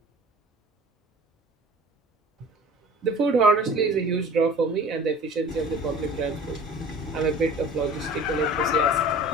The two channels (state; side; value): normal; both; correlation 0.43